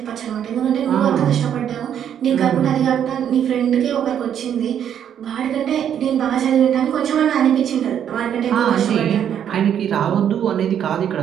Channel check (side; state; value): left; quieter; 9.3 dB